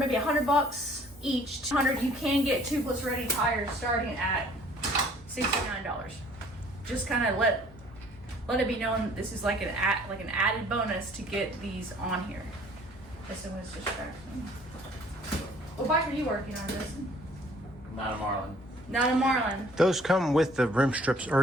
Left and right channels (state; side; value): normal; both; correlation 0.56